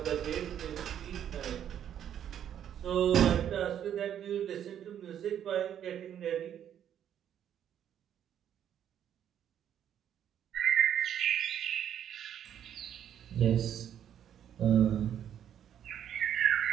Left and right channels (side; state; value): left; quieter; 9.8 dB